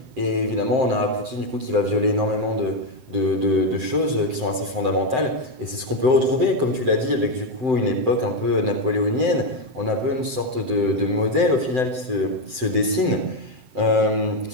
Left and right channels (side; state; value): left; late; 7.8 ms